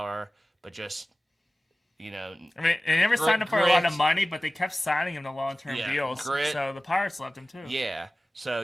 but just, I mean, they never signed him for a lot of money, but they kept signing him to long-term deals. Grit. So the Pirates loved him, too. Yeah. So,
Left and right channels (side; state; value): both; normal; correlation 0.96